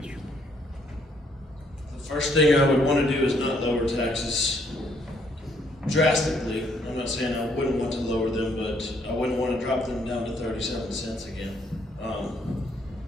The first thing I would want to do is not lower taxes drastically. I'm not saying I wouldn't want to lower them, but I wouldn't want to drop them down to 37 cents again.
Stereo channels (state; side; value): normal; both; correlation 0.69